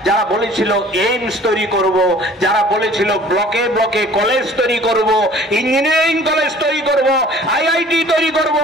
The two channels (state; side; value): normal; both; correlation 0.50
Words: যারা বলেছিল এইমস তৈরি করব, যারা বলেছিল ব্লকে ব্লকে কলেজ তৈরি করব, ইঞ্জিনিয়ারিং কলেজ তৈরি করব, আইআইটি তৈরি করব।